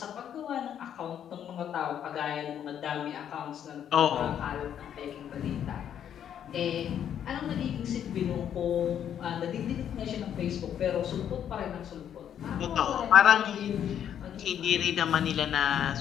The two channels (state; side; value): quieter; right; 9.5 dB